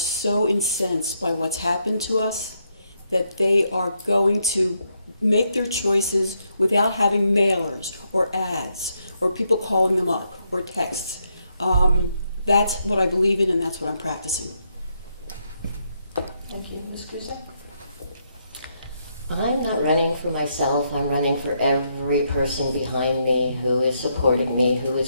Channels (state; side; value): inverted; both; correlation -0.78